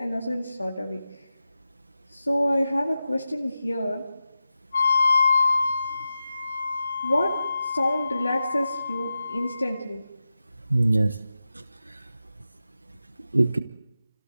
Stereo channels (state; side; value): inverted; both; correlation -0.92